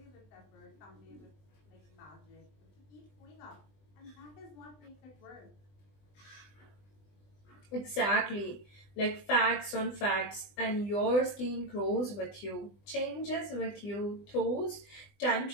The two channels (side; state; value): right; late; 20 ms